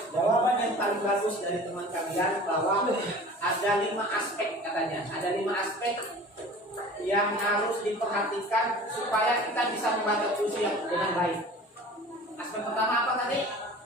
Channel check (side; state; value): both; normal; correlation 0.42